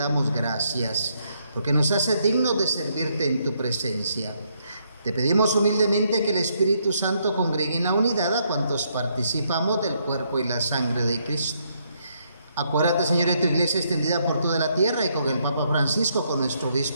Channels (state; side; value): inverted; both; correlation -0.74